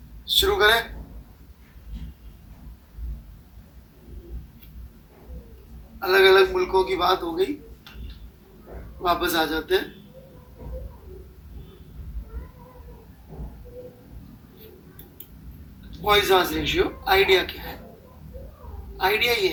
शुरू करें। अलग अलग मुल्कों की बात हो गई, वापस आ जाते हैं। पॉइजन रेशियो आइडिया क्या है? आइडिया ये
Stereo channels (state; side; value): identical; both; correlation 1.00